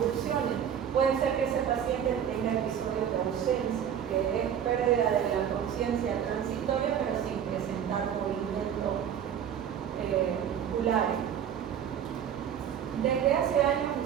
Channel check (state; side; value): quieter; left; 8.9 dB